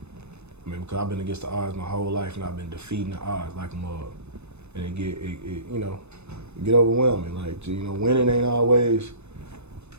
I mean, because I've been against the odds my whole life, and I've been defeating the odds like a mug. And it get overwhelming. Like, you know, winning ain't always,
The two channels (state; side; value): late; left; 0.81 ms